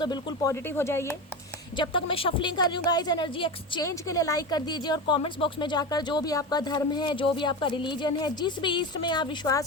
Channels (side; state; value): both; normal; correlation 0.22